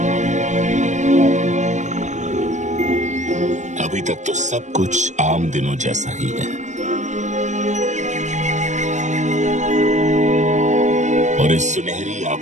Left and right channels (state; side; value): late; left; 0.35 ms